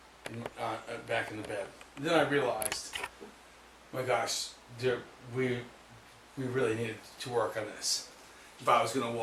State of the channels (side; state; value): both; identical; correlation 1.00